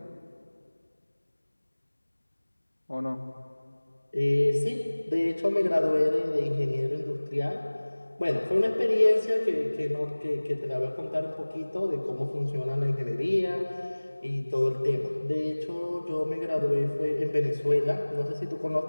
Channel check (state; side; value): inverted; both; correlation -1.00